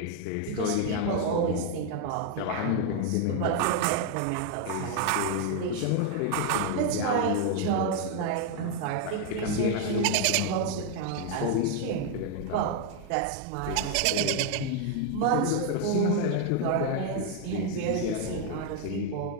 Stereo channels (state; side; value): different; both; correlation 0.01